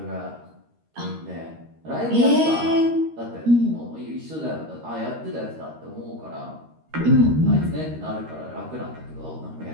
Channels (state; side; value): late; left; 13 ms